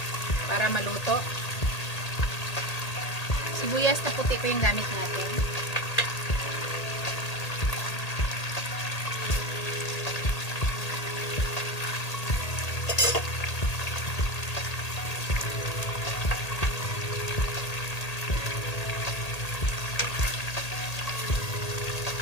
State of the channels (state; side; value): late; right; 1.8 ms